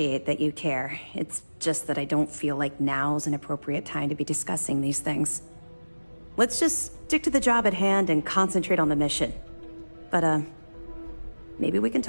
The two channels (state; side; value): inverted; both; correlation -1.00